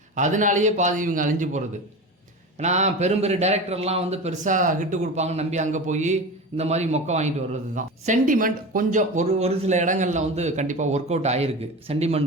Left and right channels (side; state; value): both; normal; correlation 0.28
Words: அதனாலேயே பாதி இவங்க அழிஞ்சு போகிறது. ஏன்னா பெரிய டைரக்டர்லாம் வந்து பெருசாக ஹிட்டு கொடுப்பாங்கன்னு நம்பி அங்கே போய் இந்த மாதிரி மொக்க வாங்கிட்டு வர்றது தான். சென்டிமெண்ட் கொஞ்சம் ஒரு சில இடங்களில் வந்து கண்டிப்பாக ஒர்க் அவுட் ஆகிருக்கு.